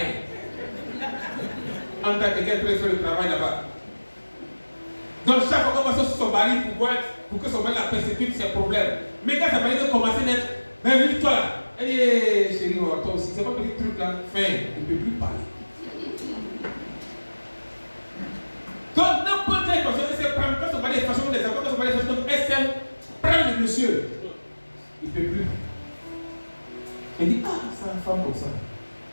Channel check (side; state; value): both; inverted; correlation -1.00